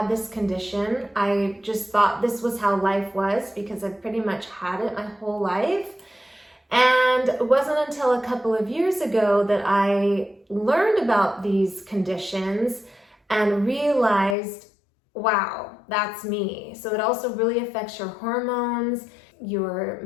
this condition. I just thought this was how life was because I've pretty much had it my whole life. And it wasn't until a couple of years ago that I learned about these conditions and realized, wow, that's me. So it also really affects your hormones, your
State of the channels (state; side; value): drops out; right; at 14.4 s